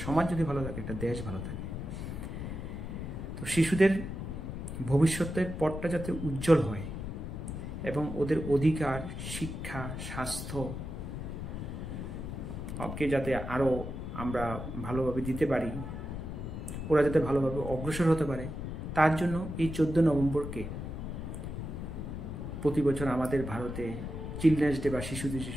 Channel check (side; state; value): left; noise; rumble, 6 dB below the sound